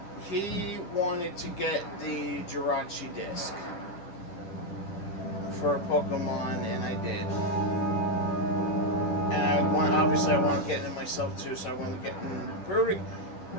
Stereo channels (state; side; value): late; right; 10 ms